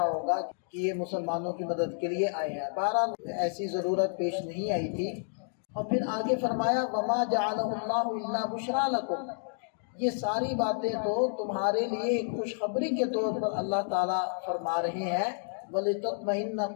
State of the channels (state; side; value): silent; right; digital silence